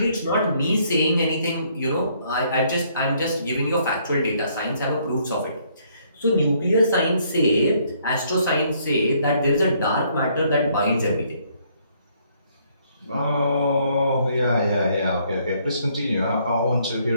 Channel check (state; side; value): inverted; both; correlation -0.67